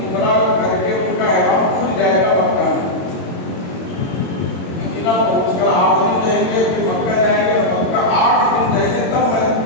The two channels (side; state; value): right; late; 22 ms